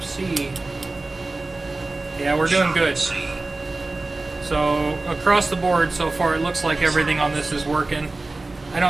C. Yeah, we're doing good. So across the board so far, it looks like everything on this is working. I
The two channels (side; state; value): left; quieter; 3.2 dB